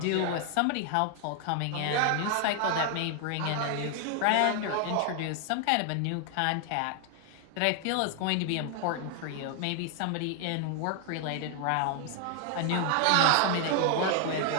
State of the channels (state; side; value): different; both; correlation 0.00